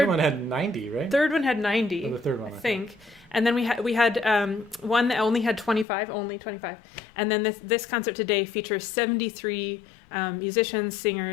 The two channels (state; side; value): drops out; right; at 5.9 s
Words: one had 90, right? Third one had 90, the third one, I think. And then we had one that only had 25, And then this concert today features 73 musicians,